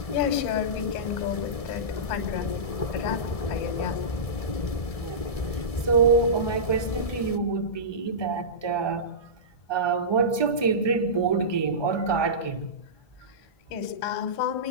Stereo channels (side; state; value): right; late; 1.6 ms